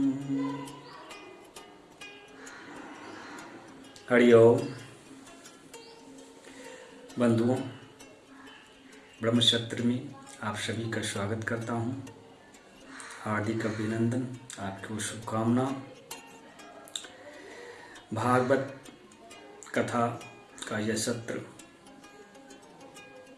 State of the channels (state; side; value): identical; both; correlation 1.00